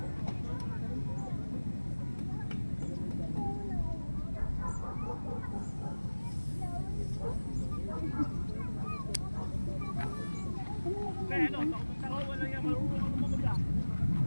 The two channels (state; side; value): inverted; both; correlation -1.00